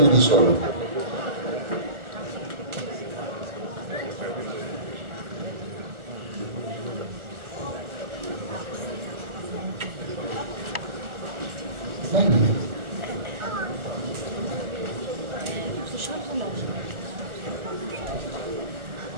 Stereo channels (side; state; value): left; late; 1.3 ms